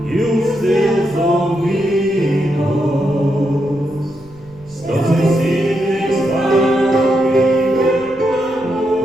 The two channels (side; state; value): right; noise; rumble, 25 dB below the sound